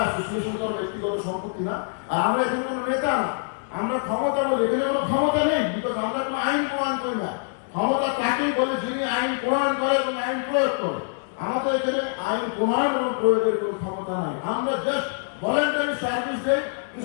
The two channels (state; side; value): silent; right; 62 dB below the other